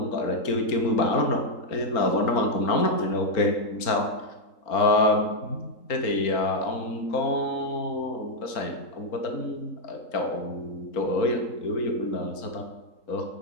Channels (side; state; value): right; late; 3.8 ms